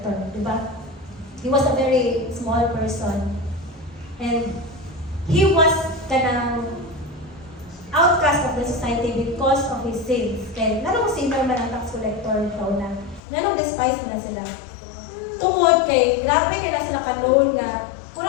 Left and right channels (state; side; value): drops out; right; at 13.2 s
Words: di ba? He was a very small person. And he was kanang outcast of the society because of his sins. Kaya nanong sinner man ang tax collector ikaw na. Nanong despise mo na sila. Tungod kay, grabe kay na sila kanoon nga,